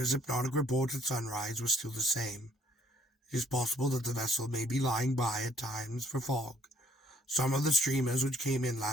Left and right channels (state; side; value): normal; both; correlation 0.63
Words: hypnotic report at sunrise was still the same. It is possible that the vessel may be lying by at times for fog. Some of the streamers which came in